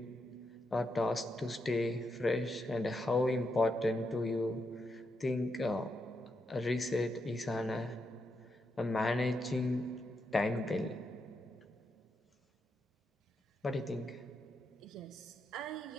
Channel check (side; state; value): both; normal; correlation 0.82